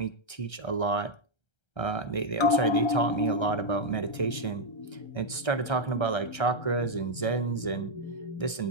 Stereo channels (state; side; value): late; right; 1.3 ms